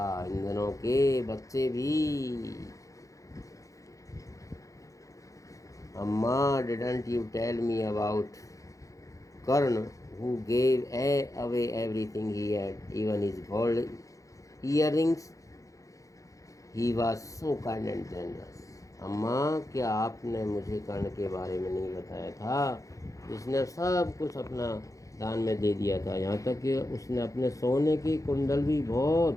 इन दिनों के बच्चे भी। अम्मा, didn't you tell me about Karna who gave away everything he had, even his gold earrings? He was so kind and generous. अम्मा, क्या आपने मुझे कर्ण के बारे में नहीं बताया था? जिसने सब कुछ अपना दान में दे दिया था, यहाँ तक कि उसने अपने सोने के कुंडल भी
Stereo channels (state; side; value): late; right; 0.16 ms